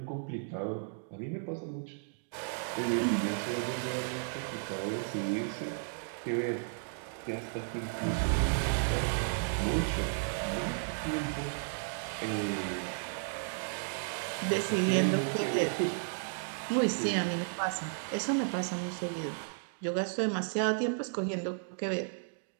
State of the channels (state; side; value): silent; left; digital silence